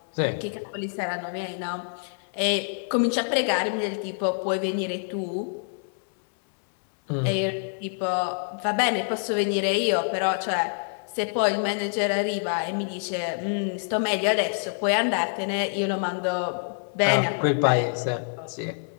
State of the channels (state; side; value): silent; right; digital silence